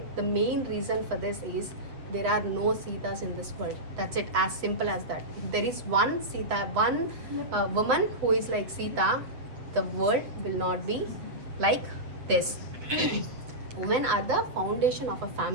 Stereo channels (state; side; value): late; left; 7.8 ms